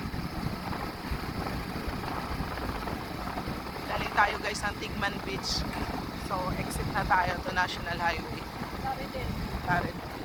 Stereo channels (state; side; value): identical; both; correlation 1.00